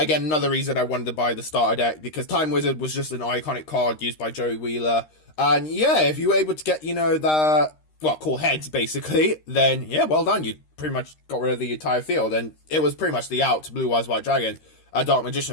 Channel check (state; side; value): late; right; 13 ms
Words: another reason I wanted to buy the starter deck, because Time Wizard was just an iconic card used by Joey Wheeler. And yeah, if you were able to get, you know, call heads, basically, then yeah, well done. You pretty much got rid of the entire field. And it was pretty much the out to Blue Eyes White Dragon, a Dark